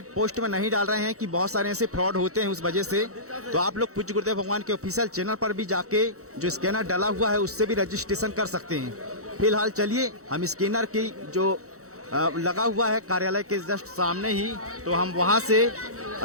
पोस्ट में नहीं डाल रहे हैं कि बहुत सारे ऐसे फ्रॉड होते हैं उस वजह से। तो आप लोग पूज्य गुरुदेव भगवान के ऑफिशियल चैनल पर भी जाके जो स्कैनर डाला हुआ है उससे भी रजिस्ट्रेशन कर सकते हैं। फिलहाल चलिए हम स्कैनर की जो लगा हुआ है कार्यालय के जस्ट सामने ही, तो हम वहाँ से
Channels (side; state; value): left; late; 0.65 ms